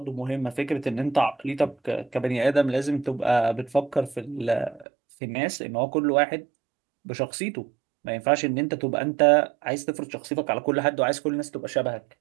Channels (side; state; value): left; drops out; at 4.9 s